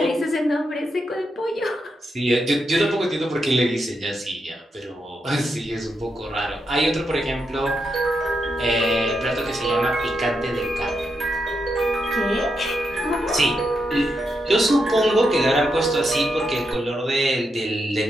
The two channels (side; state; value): both; normal; correlation 0.83